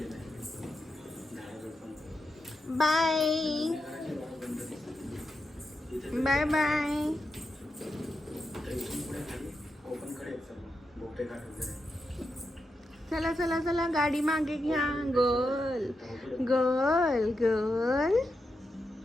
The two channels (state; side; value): normal; both; correlation 0.87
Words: आहे. Bye bye bye. चला चला चला गाडी मागे घ्या. Girl girl girl.